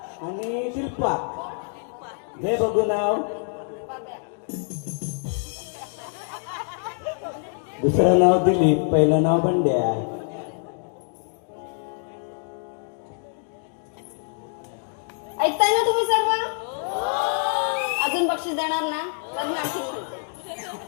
आणि दिलपा. घे बघू नाव. दुसरं नाव दिलीप, पहिलं नाव बंड्या. ऐकताय ना तुम्ही सर्व? अजून बक्षीस देणार ना? तर मी आणखी म्हणते.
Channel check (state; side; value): silent; right; 61 dB below the other